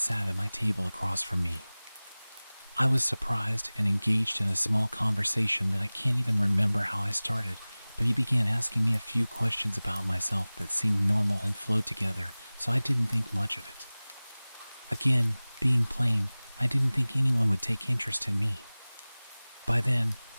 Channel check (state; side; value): inverted; both; correlation -0.99